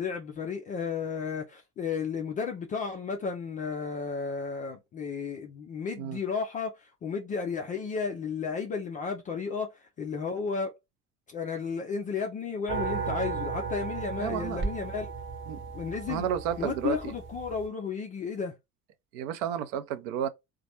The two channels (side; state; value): both; normal; correlation 0.21